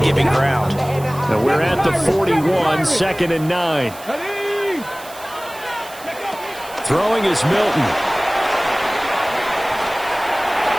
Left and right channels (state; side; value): noise; right; hiss, 18 dB below the sound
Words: giving ground. Now we're at the 41, 2nd and 9. Throwing is Milton.